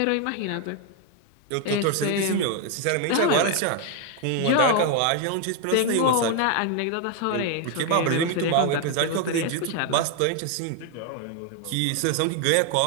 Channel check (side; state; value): both; different; correlation 0.01